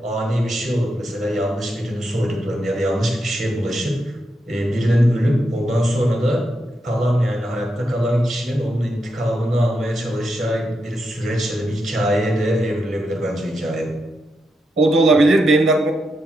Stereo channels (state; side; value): normal; both; correlation 0.84